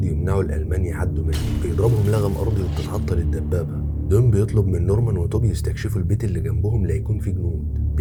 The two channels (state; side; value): identical; both; correlation 1.00